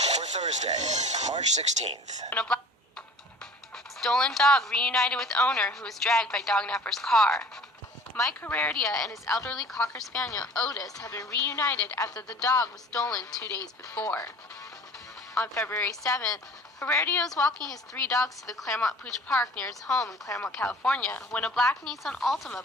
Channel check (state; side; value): normal; both; correlation 0.45